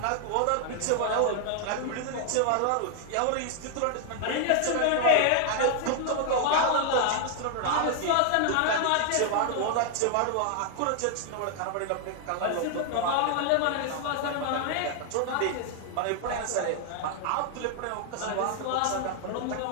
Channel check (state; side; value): different; both; correlation 0.00